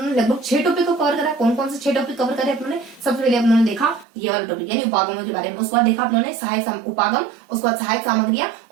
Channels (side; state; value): left; drops out; at 4.0 s